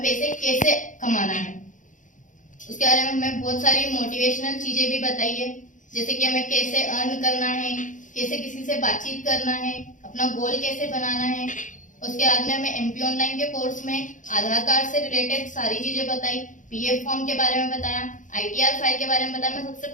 पैसे कैसे कमाना है। उसके बारे में हमें बहुत सारी मोटिवेशनल चीजें भी बताई है, जैसे कि हमें कैसे अर्न करना है, कैसे किसी से बातचीत करना है, अपना गोल कैसे बनाना है। उसके बाद में हमें एमपी ऑनलाइन के कोर्स में आधार कार्ड से रिलेटेड सारी चीजें बताई, पीएफ फॉर्म के बारे में बताया, आईटीआर फाइल के बारे में बताया। मैं सबसे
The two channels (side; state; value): right; late; 0.37 ms